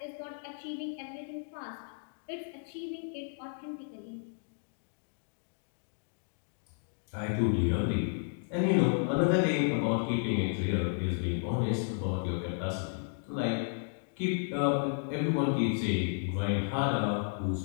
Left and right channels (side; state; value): right; silent; digital silence